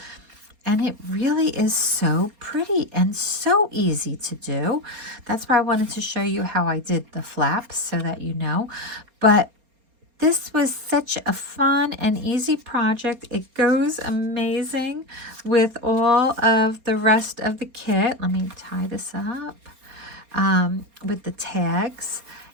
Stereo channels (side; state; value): left; late; 4.3 ms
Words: And it really is so pretty and so easy to do. That's why I wanted to show you how I did the flaps so that you know. But this was such a fun and easy project. It goes amazing with all of the rest of the kit. Let me tie this up with the tags.